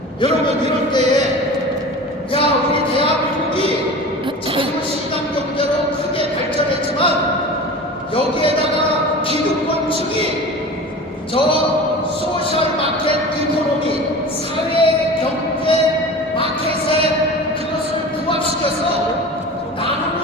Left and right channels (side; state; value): both; normal; correlation 0.35